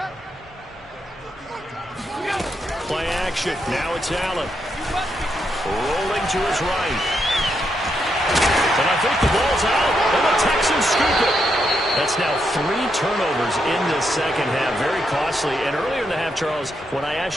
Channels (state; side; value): normal; both; correlation 0.81